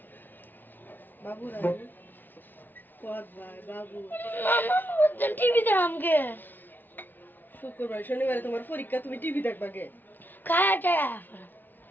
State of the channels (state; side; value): late; right; 0.090 ms